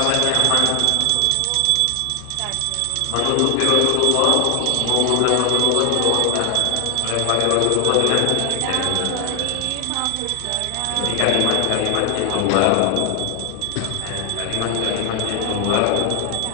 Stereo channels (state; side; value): different; both; correlation 0.00